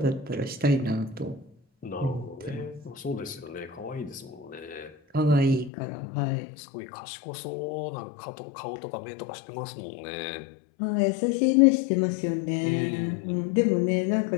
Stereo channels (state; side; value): drops out; right; at 5.7 s